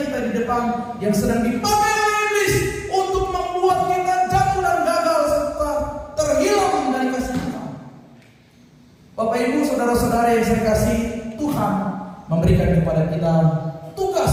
kita di depan, yang sedang dipakai oleh iblis untuk membuat kita jatuh dan gagal serta terhilang dari kasih Tuhan. Bapak Ibu, saudara-saudara yang saya kasih, Tuhan memberikan kepada kita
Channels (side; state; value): both; identical; correlation 1.00